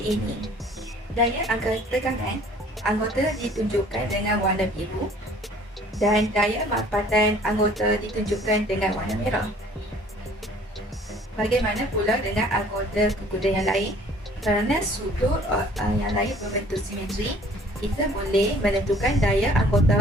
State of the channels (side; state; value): both; normal; correlation 0.54